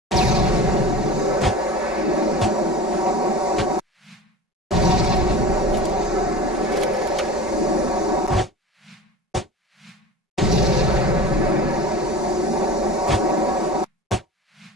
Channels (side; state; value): both; normal; correlation 0.34